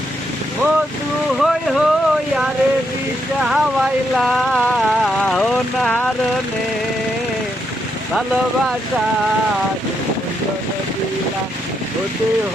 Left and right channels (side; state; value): both; normal; correlation 0.79